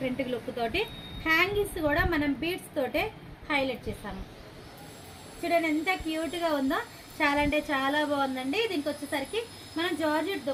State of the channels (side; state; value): both; identical; correlation 1.00